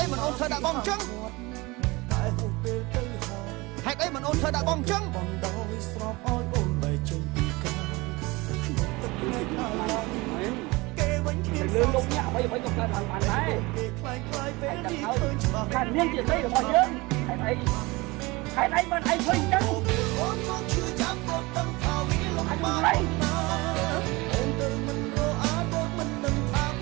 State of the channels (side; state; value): left; quieter; 23.3 dB